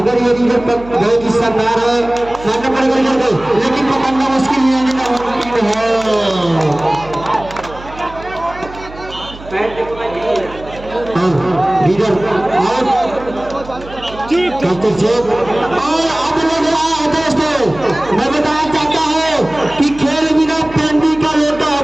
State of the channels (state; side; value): noise; right; hum, 17 dB below the sound